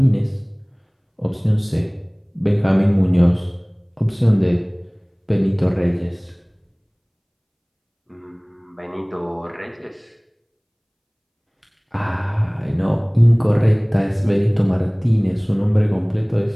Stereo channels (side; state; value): both; identical; correlation 1.00